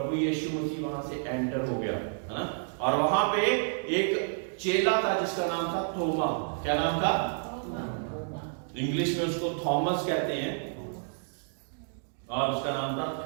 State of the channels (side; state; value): left; silent; 56 dB below the other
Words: यीशु मसीह वहां से एंटर हो गया, है ना। और वहां पे एक चेला था जिसका नाम था थोमा। क्या नाम था? इंग्लिश में उसको थॉमस कहते हैं, और उसका नाम था